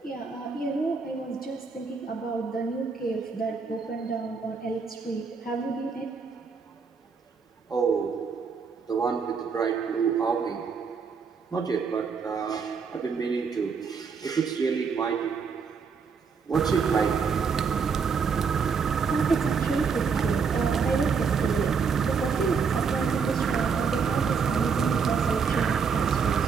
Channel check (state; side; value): quieter; left; 5.7 dB